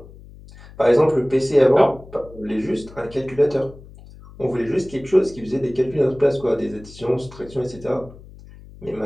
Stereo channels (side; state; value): left; noise; hum, 20 dB below the sound